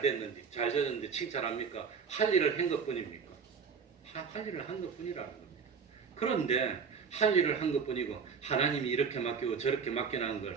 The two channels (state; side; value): quieter; left; 6.1 dB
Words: 졌는지 칭찬합니까? 할 일을 한 것뿐입니까? 할 일을 한 것뿐이라는 겁니다. 그런데 할 일을 한 것뿐이고 하나님이 이렇게 맡기고 저렇게 맡겨놓은